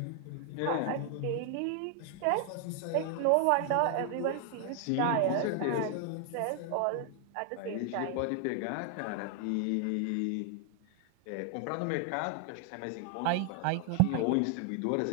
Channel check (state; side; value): different; both; correlation 0.00